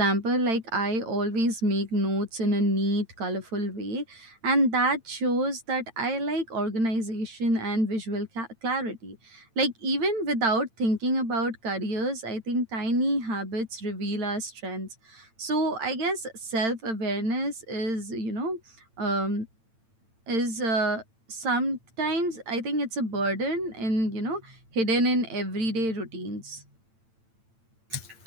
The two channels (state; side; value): late; left; 8.9 ms